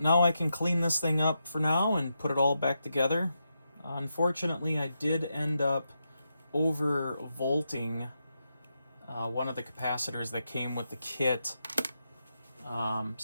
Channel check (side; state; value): both; inverted; correlation -0.85